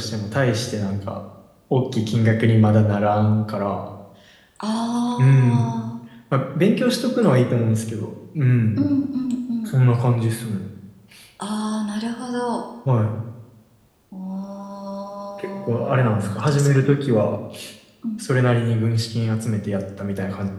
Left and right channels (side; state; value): both; identical; correlation 1.00